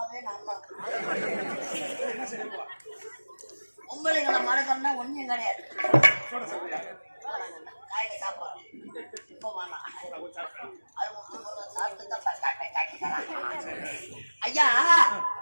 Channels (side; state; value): both; inverted; correlation -1.00